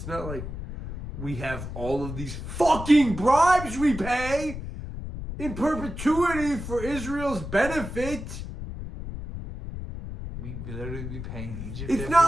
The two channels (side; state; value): left; noise; rumble, 8 dB below the sound